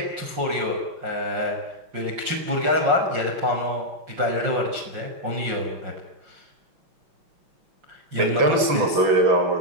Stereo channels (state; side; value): late; left; 5.6 ms